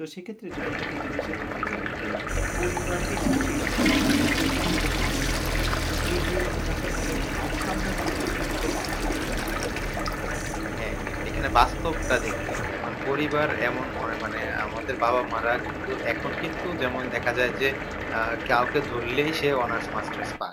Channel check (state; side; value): identical; both; correlation 1.00